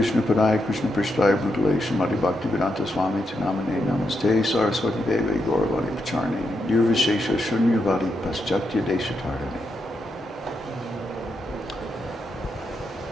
Padaya Krishna Prishtaya Bhutale Srimati Bhaktivedanta Swami Tinamane Namaste Saraswati Devi Gauravani Pacharni Nirvishesha Shunyavadi Paschatya Deshatardani.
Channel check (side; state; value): both; normal; correlation 0.83